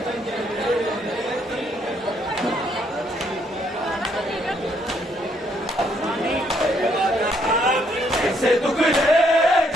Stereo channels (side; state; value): both; normal; correlation 0.71